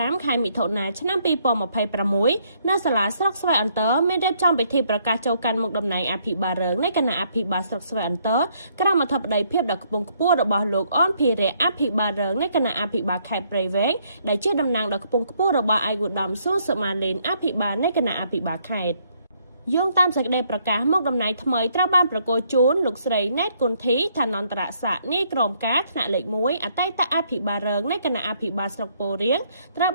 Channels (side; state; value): both; inverted; correlation -0.70